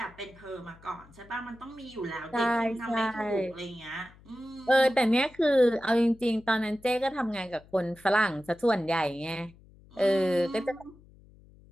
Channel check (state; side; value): noise; left; hum, 25 dB below the sound